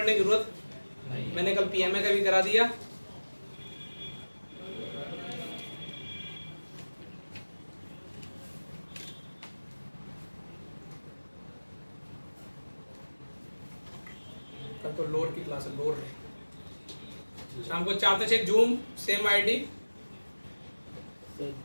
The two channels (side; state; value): both; inverted; correlation -1.00